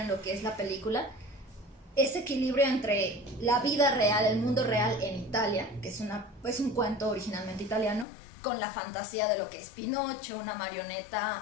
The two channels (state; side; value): drops out; right; at 8.1 s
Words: lo que es la película. Ese equilibrio entre la vida real, el mundo real en Italia, que es un cuento originalmente italiano, con la fantasía de lo que es Pinocho, una